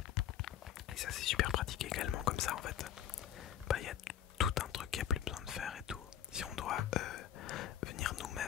ça c'est super pratique également comme ça en fait. Bah il y a tout un truc qu'il n'y a plus besoin de faire et tout. Si on doit venir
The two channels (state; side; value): quieter; right; 10.4 dB